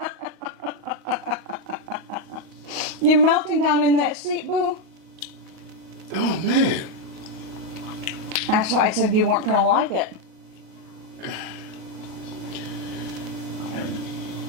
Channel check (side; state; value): left; late; 38 ms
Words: You're melting down in that seat, Boo. Oh man. That's why I said you weren't gonna like it.